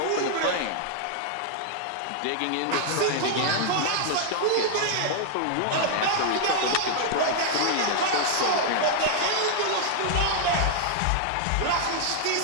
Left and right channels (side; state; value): both; different; correlation -0.01